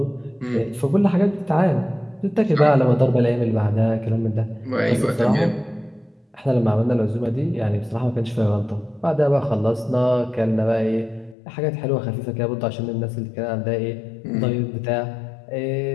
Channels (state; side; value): drops out; right; at 11.4 s